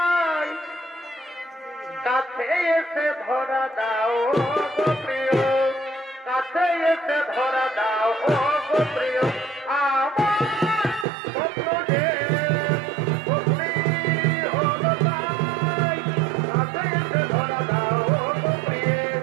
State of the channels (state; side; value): drops out; left; at 11.1 s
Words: কাছে এসে ধরা দাও গো প্রিয়, কাছে এসে ধরা দাও গো প্রিয়। আমার স্বপ্ন যে সত্যি হল তাই, কাছে এসে ধরা দাও গো প্রিয়,